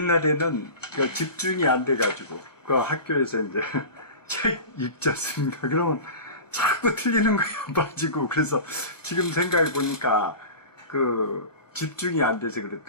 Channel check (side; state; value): right; late; 1.1 ms